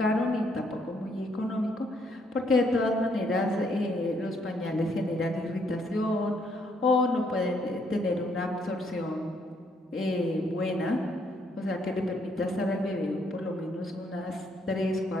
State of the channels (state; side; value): normal; both; correlation 0.71